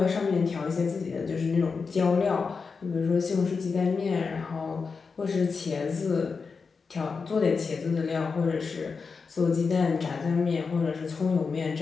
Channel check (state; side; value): quieter; right; 5.0 dB